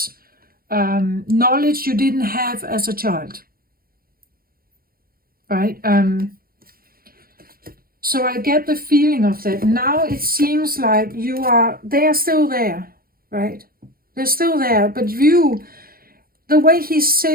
knowledge you didn't have as a child, right? So I get the feeling of that. Now it seems like they are still there, right? They're still there, but the way he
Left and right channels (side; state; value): left; late; 0.43 ms